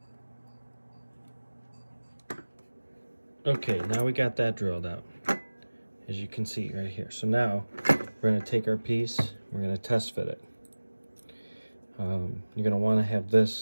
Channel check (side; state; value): both; inverted; correlation -1.00